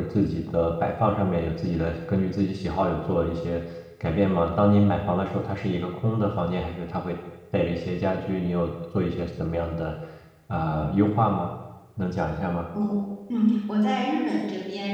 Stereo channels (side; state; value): both; identical; correlation 1.00